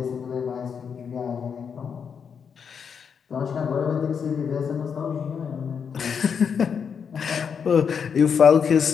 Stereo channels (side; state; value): right; quieter; 6.8 dB